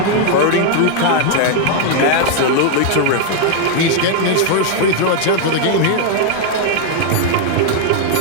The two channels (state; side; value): different; both; correlation 0.00